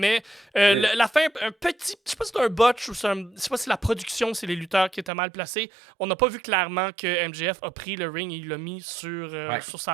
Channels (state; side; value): drops out; left; at 5.1 s